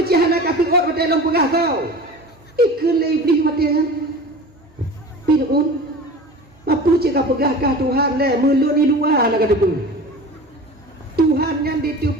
cihana kasih orang pada dalam pegah kau? Ikut lagi iblis mati kan? Firaun. Apa cakap pegahkah Tuhan le? Melun di luar nak kata pun. Tuhan yang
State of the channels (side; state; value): both; normal; correlation 0.36